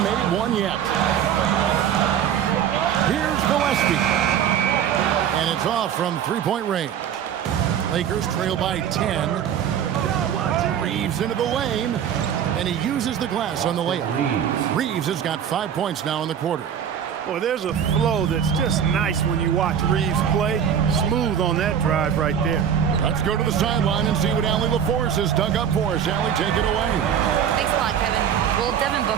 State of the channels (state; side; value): quieter; left; 8.8 dB